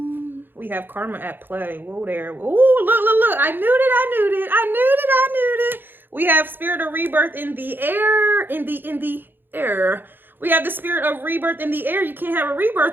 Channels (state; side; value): late; left; 0.097 ms